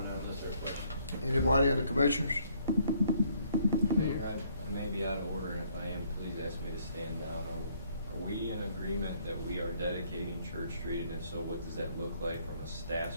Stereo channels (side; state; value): both; inverted; correlation -0.67